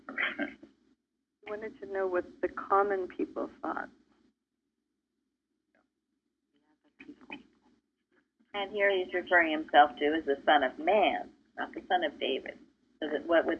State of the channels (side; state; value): both; identical; correlation 1.00